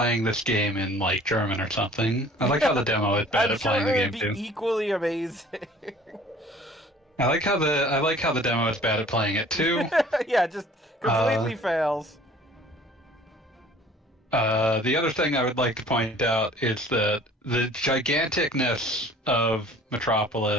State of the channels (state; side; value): normal; both; correlation 0.51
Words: this game in, like, German or something? I like how the demo is bad at playing the game, too. It would be equally amazing. I like how the demo is bad at playing it, too. Yeah, just completely fails. The other thing I would like to point out is that the giganticness of